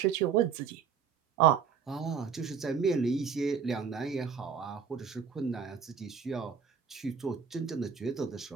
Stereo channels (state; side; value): quieter; left; 6.7 dB